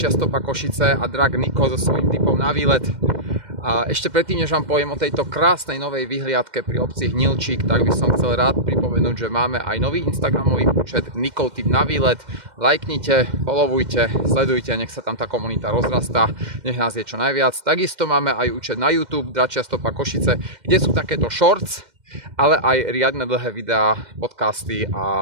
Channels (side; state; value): left; late; 2.1 ms